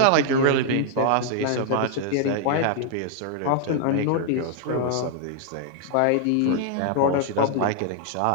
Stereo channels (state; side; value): different; both; correlation 0.00